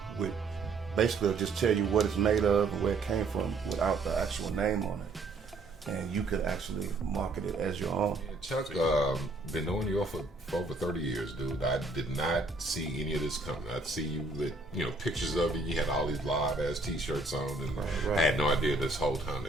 with basically just tell you what it's made of and where it came from without the actual name on it. And you could actually market it as your own. Yeah, Chuck, been knowing you for over 30 years, dude. I did not see any of this coming. I'd see you with, pictures of you. You had all these live ass t-shirts on, and I had no idea this whole time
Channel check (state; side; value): quieter; left; 3.3 dB